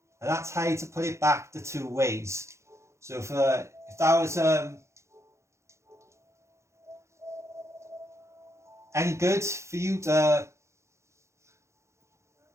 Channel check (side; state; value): left; late; 0.14 ms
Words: and that's how to put it back the two ways. So if that was any good for you at